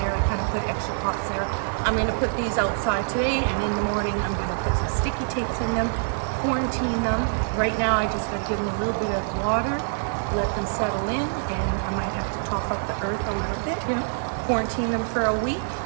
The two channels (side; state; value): left; silent; digital silence